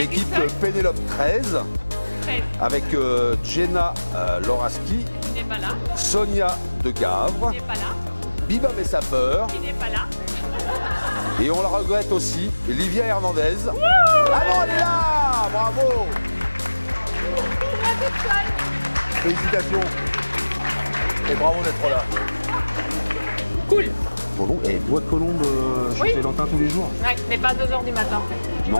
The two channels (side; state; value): both; inverted; correlation -1.00